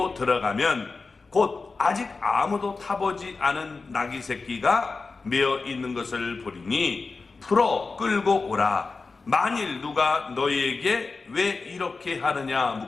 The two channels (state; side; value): quieter; right; 4.1 dB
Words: 들어가면 곧 아직 아무도 타보지 않은 나귀 새끼가 메어 있는 것을 보리니 풀어 끌고 오라. 만일 누가 너희에게 왜 이렇게 하느냐